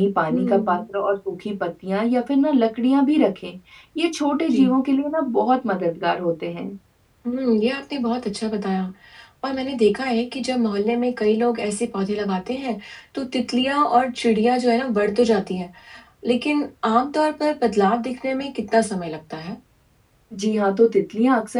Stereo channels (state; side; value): identical; both; correlation 1.00